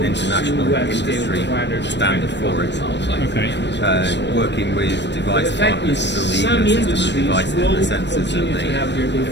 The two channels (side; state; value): right; late; 0.51 ms